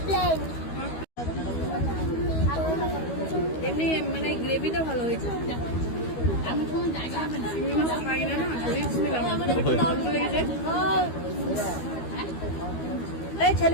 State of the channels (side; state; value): right; late; 12 ms